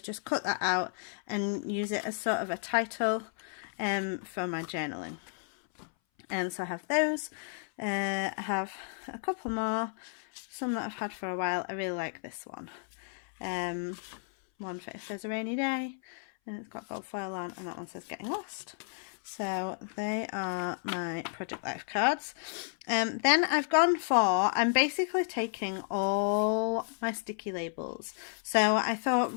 just cut that out and use it as sort of a title for my journaling. And so I have those. I have a couple more, some that I've had for a while. I really like this one. One for if there's a rainy day, and it's got gold foil on, and that one says Getting Lost. So they are my Project Life cards. Then I've gone for, I'm basically taking all my sticky labels. So I thought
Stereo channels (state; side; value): silent; right; 56 dB below the other